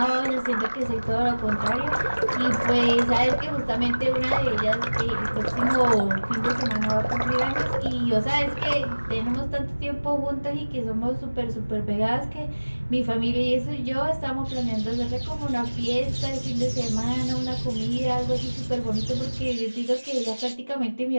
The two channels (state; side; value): inverted; both; correlation -1.00